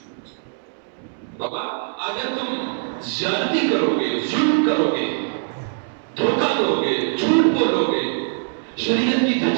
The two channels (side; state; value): left; silent; 64 dB below the other